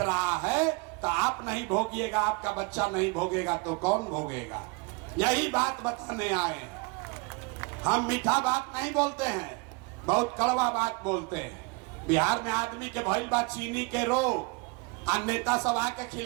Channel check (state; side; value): quieter; left; 29.0 dB